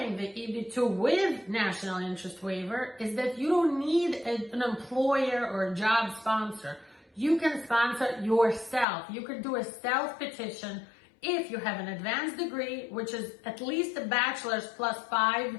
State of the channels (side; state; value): right; drops out; at 8.8 s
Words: the EB2 with national interest waiver is that you don't need an employer or a job sponsor. You can sponsor yourself. You can do a self-petition if you have an advanced degree, which is at least a bachelor's plus 5